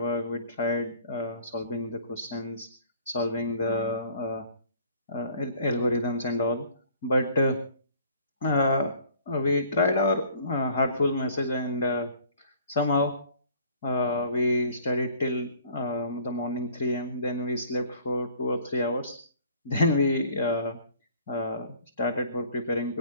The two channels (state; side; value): inverted; both; correlation -0.53